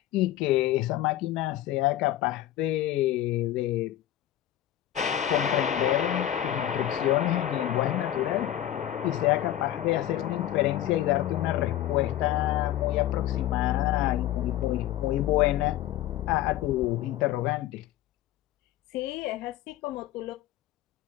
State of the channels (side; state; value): right; quieter; 12.8 dB